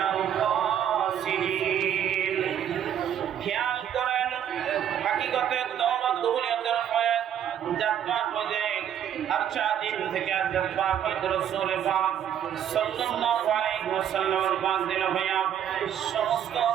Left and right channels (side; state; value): left; quieter; 9.7 dB